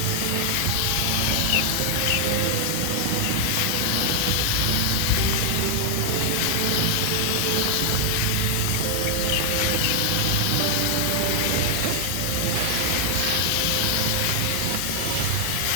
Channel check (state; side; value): different; both; correlation 0.00